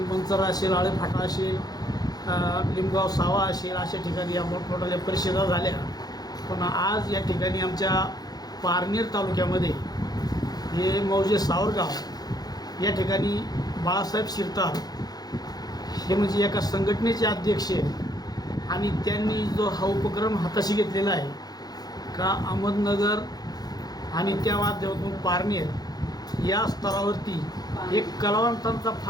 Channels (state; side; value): late; right; 0.19 ms